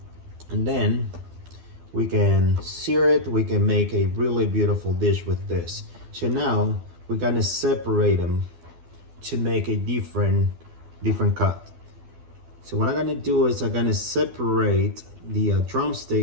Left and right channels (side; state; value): left; late; 12 ms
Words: And then we can sear it, we can make a really beautiful dish with this. So now we're gonna separate them to make a different cut. So what I'm gonna do is I'm gonna separate the